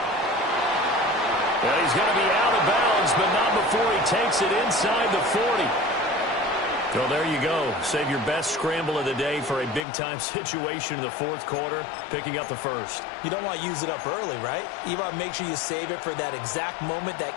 Well, he's going to be out of bounds, but not before he takes it inside the 40. So there you go. Save your best scramble of the day for a big-time situation in the 4th quarter, picking up the 1st. You don't want to use it up early, right? You want to make sure you save it for that exact moment,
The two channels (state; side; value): drops out; right; at 9.9 s